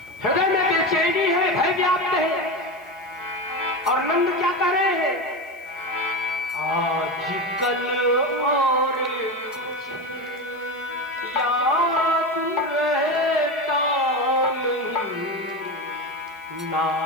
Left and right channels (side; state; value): right; noise; hiss, 29 dB below the sound